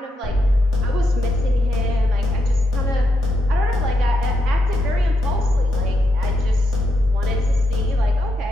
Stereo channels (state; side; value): normal; both; correlation 0.82